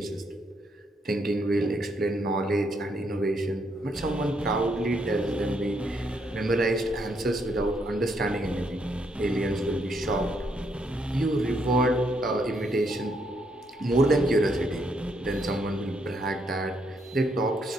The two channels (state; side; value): normal; both; correlation 0.74